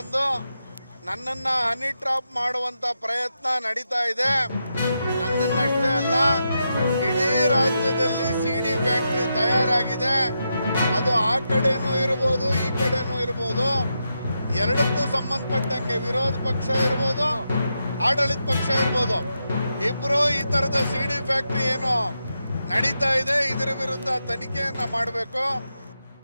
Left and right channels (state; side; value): inverted; both; correlation -0.85